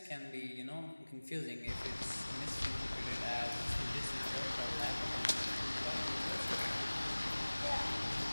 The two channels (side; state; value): both; inverted; correlation -1.00